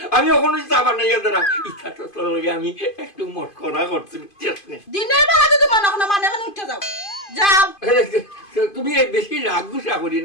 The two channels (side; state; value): right; late; 2.5 ms